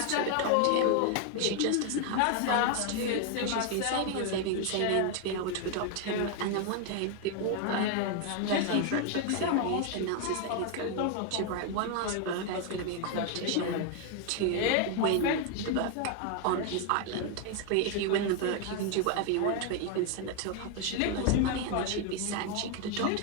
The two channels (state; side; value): different; both; correlation 0.01